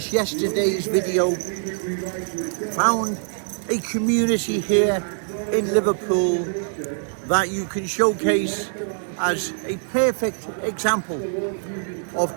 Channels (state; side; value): silent; left; 63 dB below the other